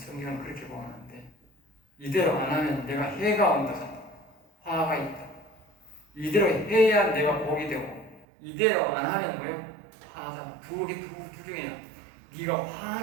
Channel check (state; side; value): drops out; left; at 8.2 s